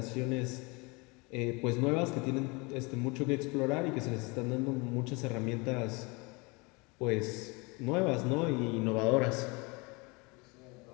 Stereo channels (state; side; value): quieter; right; 27.6 dB